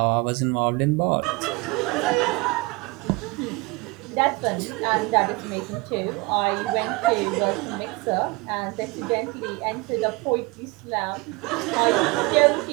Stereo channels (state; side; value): quieter; left; 24.5 dB